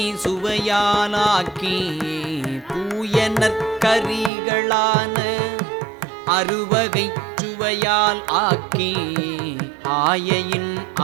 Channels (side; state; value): left; drops out; at 4.3 s